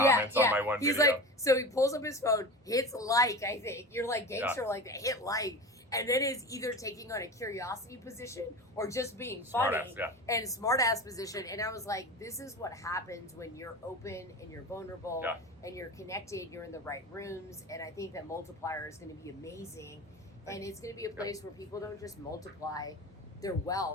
on my one video. He's like, so he pulls up his phone, hits like, I think. You're like gangster like that, hit like. And then is either taking on a curiosity position or just being funny and smartass position. And I was like, this is what happens when you're open and you're vulnerable and you're connected, you're in the right rooms. And I think that multiplier is going to be amazing. And it's going to be a place where people don't just multiply their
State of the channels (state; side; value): normal; both; correlation 0.31